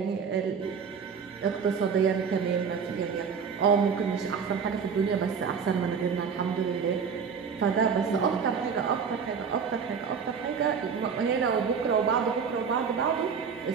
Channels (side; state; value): left; quieter; 6.3 dB